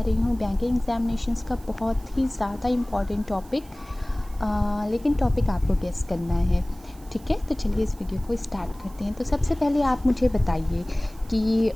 हूँ बैंकिंग एग्जामिनेशंस का बहुत ही ज़्यादा इम्पॉर्टेंट टॉपिक। लेकिन टॉपिक आपको गेस करना है, ठीक है? तो चलिए इस वीडियो को स्टार्ट करते हैं। तो सबसे पहले आप मुझे बताइए कि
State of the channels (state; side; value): noise; right; hiss, 25 dB below the sound